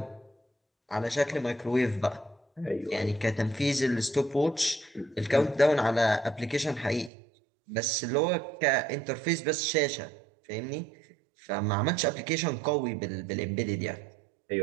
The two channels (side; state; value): left; drops out; at 7.1 s